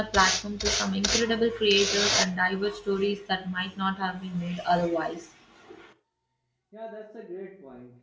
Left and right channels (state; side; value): identical; both; correlation 1.00